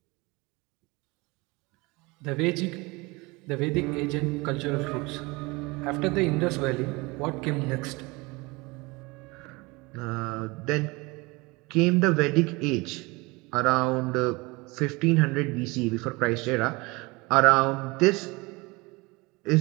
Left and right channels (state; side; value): quieter; left; 24.8 dB